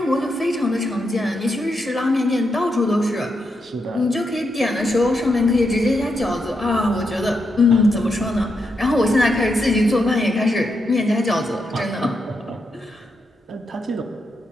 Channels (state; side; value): normal; both; correlation 0.83